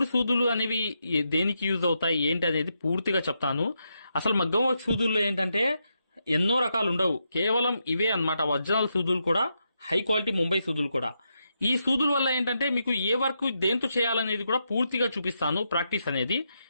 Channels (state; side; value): inverted; both; correlation -0.83